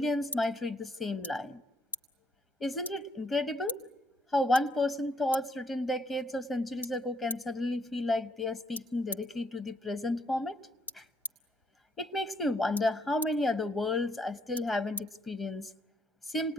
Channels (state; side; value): normal; both; correlation 0.72